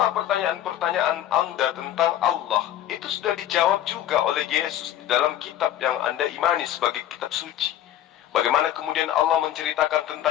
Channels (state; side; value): quieter; right; 11.8 dB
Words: pertanyaan-pertanyaan Anda tentang Allah itu sudah dijawab juga oleh Yesus di dalam kitab yang Anda imani sebagai kitab suci. Bagaimana kemudian Allah menceritakan